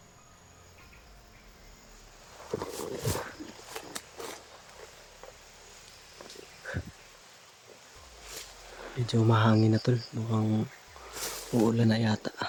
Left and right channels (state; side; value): identical; both; correlation 1.00